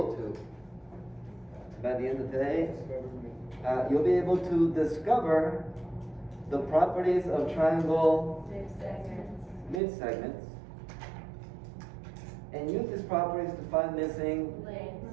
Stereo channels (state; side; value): drops out; left; at 9.8 s